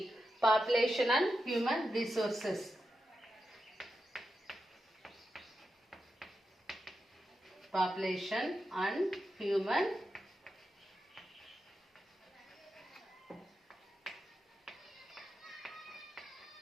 population and human resources. Population and human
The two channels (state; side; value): normal; both; correlation 0.89